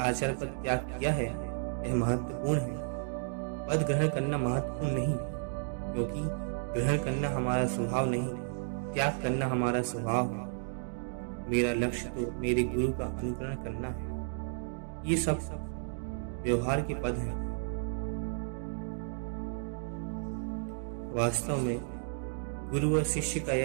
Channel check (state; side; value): silent; left; digital silence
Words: पद त्याग किया है, यह महत्वपूर्ण है। पद ग्रहण करना महत्वपूर्ण नहीं, क्योंकि ग्रहण करना हमारा स्वभाव नहीं, त्याग करना हमारा स्वभाव है। मेरा लक्ष्य तो मेरे गुरु का अनुकरण करना है। ये सब व्यवहार के पद हैं। वास्तव में गुरु और शिष्य का